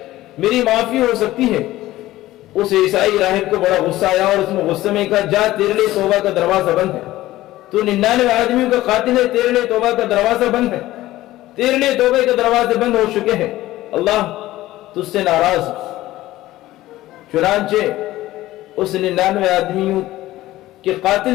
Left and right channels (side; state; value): right; quieter; 16.1 dB